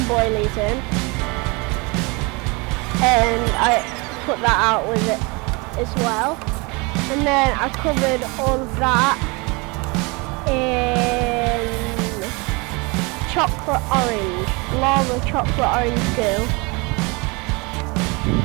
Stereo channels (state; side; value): quieter; left; 27.8 dB